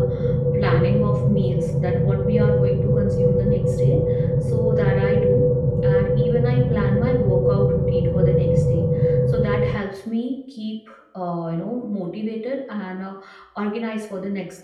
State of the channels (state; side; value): identical; both; correlation 1.00